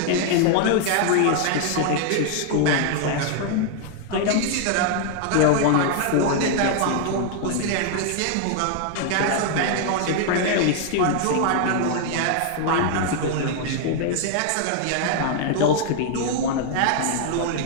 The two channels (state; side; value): different; both; correlation 0.00